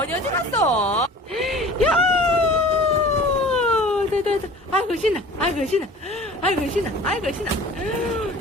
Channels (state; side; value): normal; both; correlation 0.44